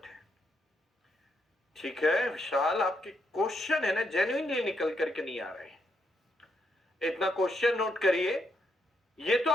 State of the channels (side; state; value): both; normal; correlation 0.78